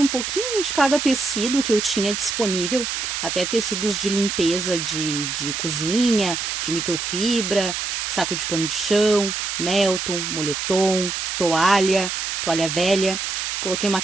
pouquinho de cada tecido que eu tinha disponível, até tecidos de limpeza de cozinha, de microfibra, saco de pano de chão, Melton, moletom, toalha velha. Coloquei uma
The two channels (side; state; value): right; noise; hiss, 3 dB below the sound